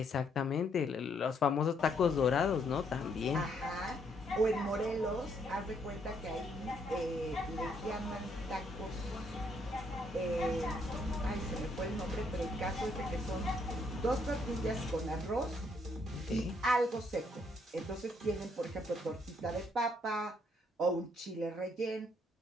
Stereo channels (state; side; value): normal; both; correlation 0.71